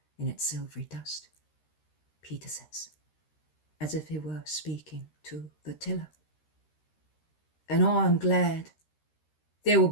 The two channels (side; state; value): right; late; 13 ms